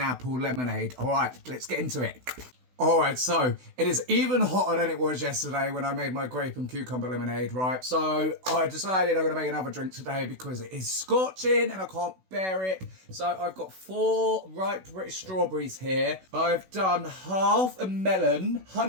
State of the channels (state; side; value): late; left; 16 ms